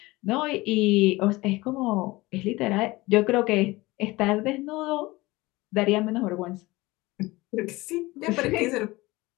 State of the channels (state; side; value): quieter; right; 20.8 dB